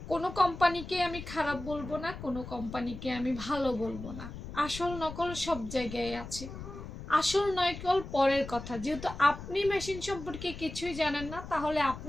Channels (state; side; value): noise; left; rumble, 11 dB below the sound